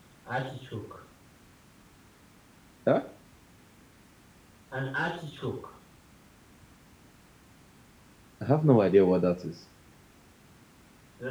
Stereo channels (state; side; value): identical; both; correlation 1.00